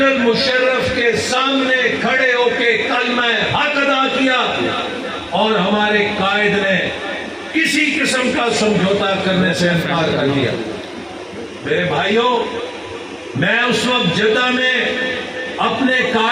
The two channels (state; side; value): identical; both; correlation 1.00